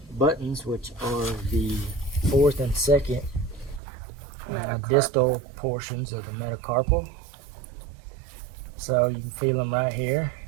buttons, which are the 4th and 2nd distal portions of the metacarpal. So you can feel them right here,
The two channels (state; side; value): drops out; left; at 3.8 s